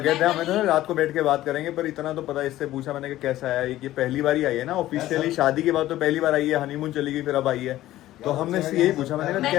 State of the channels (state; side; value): quieter; right; 14.8 dB